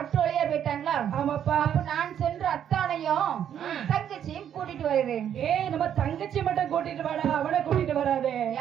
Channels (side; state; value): left; quieter; 9.5 dB